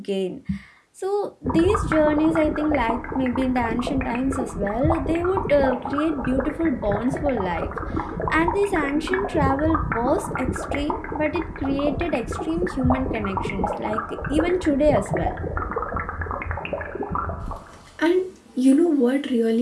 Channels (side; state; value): both; identical; correlation 1.00